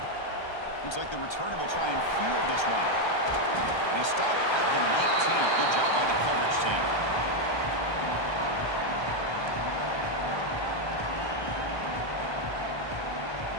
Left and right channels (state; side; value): late; right; 1.3 ms